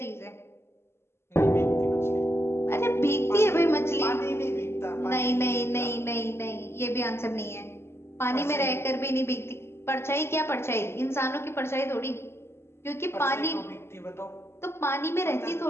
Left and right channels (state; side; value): late; right; 0.12 ms